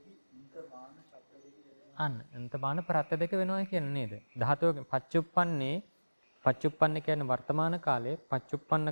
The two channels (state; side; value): inverted; both; correlation -1.00